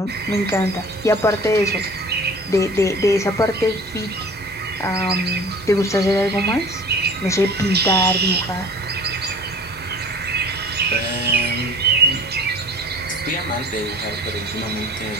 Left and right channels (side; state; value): both; normal; correlation 0.44